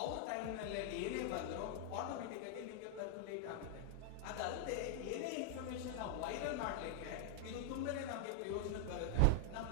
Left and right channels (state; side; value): different; both; correlation 0.00